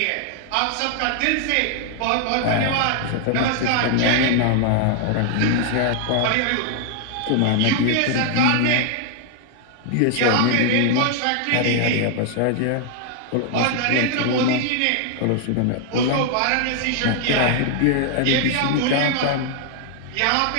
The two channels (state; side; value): different; both; correlation 0.00